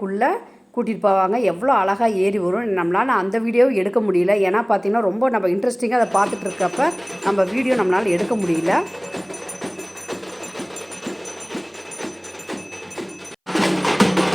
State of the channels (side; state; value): both; identical; correlation 1.00